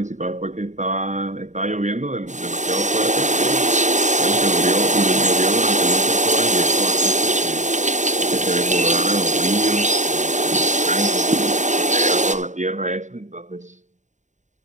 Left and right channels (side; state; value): left; late; 0.35 ms